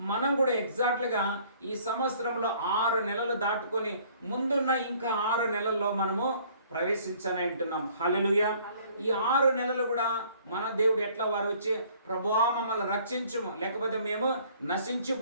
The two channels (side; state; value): both; inverted; correlation -0.58